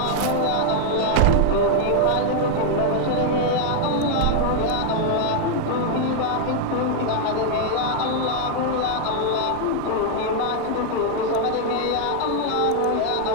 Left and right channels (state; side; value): different; both; correlation 0.00